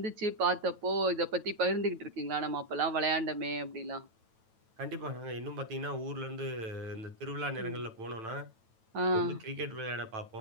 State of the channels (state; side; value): late; left; 9.0 ms